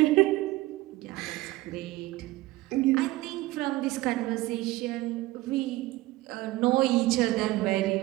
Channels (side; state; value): left; quieter; 18.4 dB